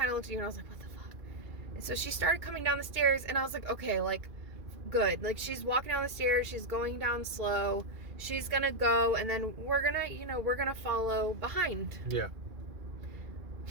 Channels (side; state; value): left; late; 2.0 ms